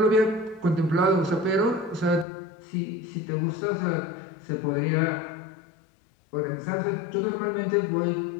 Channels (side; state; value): right; drops out; at 2.2 s